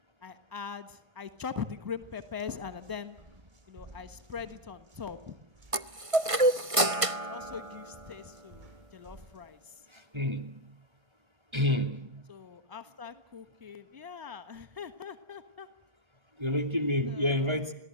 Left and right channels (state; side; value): late; left; 1.5 ms